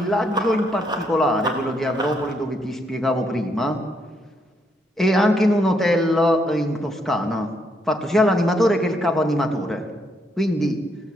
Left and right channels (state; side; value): normal; both; correlation 0.75